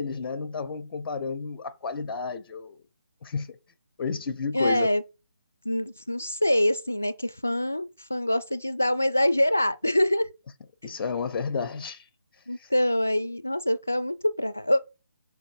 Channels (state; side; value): inverted; both; correlation -0.93